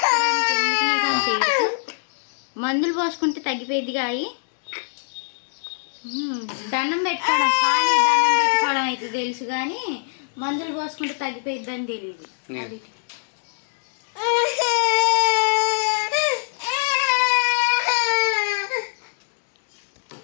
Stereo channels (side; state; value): right; silent; digital silence